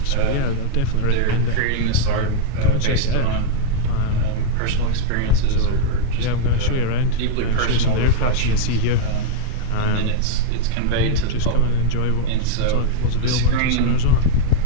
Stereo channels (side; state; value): both; different; correlation -0.01